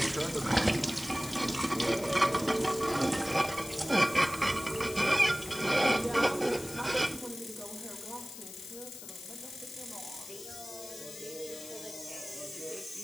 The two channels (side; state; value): left; noise; hiss, 13 dB below the sound